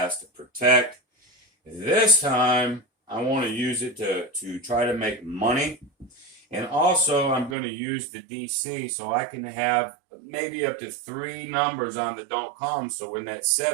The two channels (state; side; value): drops out; left; at 7.6 s